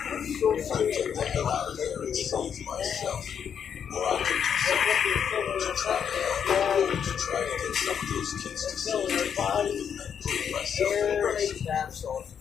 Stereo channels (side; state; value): right; quieter; 7.8 dB